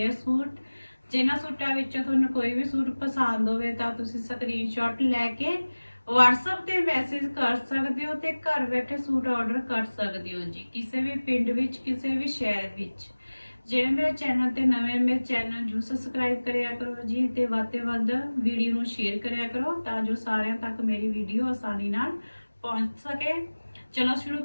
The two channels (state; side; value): inverted; both; correlation -1.00